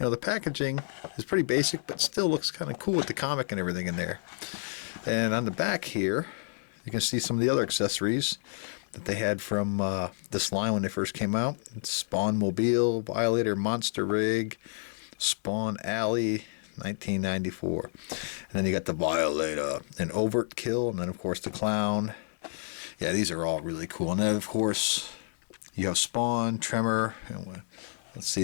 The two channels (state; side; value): silent; right; 58 dB below the other